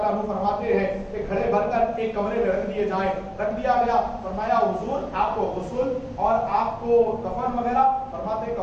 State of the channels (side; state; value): both; identical; correlation 1.00